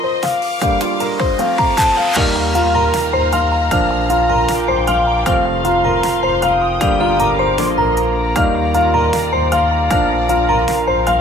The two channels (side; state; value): both; normal; correlation 0.64